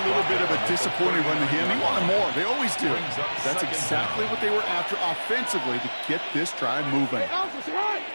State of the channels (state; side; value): inverted; both; correlation -1.00